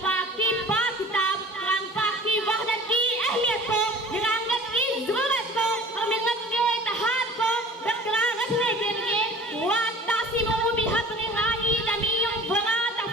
पाक की पाक किताब कुरान पाक की वहदत की अहमियत को, निगाहत की जरूरत को और मिल्लत के इत्तेहाद को बरकरार रखने के लिए वातासिमू बिहब्लिल्लाहि जमीअन वला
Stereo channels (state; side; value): normal; both; correlation 0.45